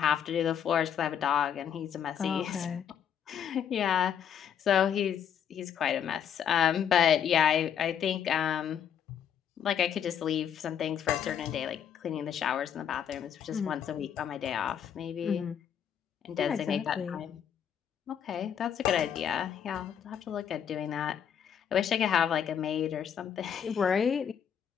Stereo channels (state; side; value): quieter; right; 8.7 dB